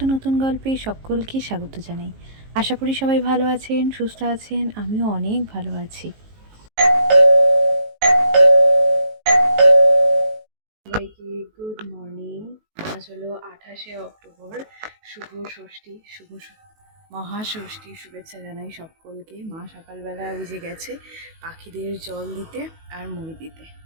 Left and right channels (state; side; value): late; left; 19 ms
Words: নতুন গল্পে সকলকে স্বাগত জানাই। আশা করি সবাই ভালো আছেন, সুস্থ আছেন। আমিও অনেক ভালো আছি। সবাইকে গুড মর্নিং। আজ হলো 28শে অক্টোবর। শুভ ষষ্ঠী, মহাষষ্ঠী শুভেচ্ছা জানাই সকলকে। মা সকালবেলা উঠে গেছে পাখিদের জল দিতে আর মুড়ি দিতে।